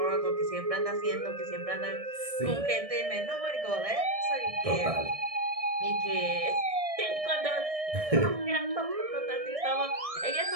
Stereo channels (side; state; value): left; late; 1.6 ms